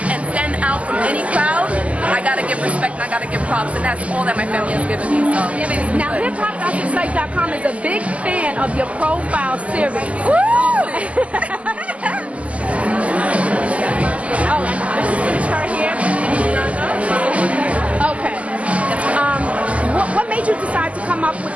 and stand out from any crowd, I gotta give respect and I gotta give props, and that's all that my family has given me. So now, hiphopgospelsite.com is a big fan of your profile series. Woo! Oh, this is right here. Okay. What made you decide to come up with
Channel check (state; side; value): late; left; 0.067 ms